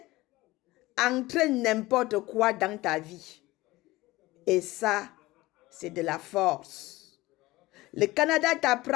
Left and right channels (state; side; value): quieter; right; 19.2 dB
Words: entrer n'importe quoi dans ta vie. Et ça, c'est de la force. Le Canada